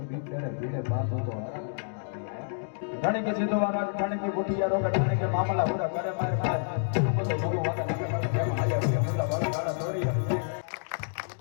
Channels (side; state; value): right; silent; digital silence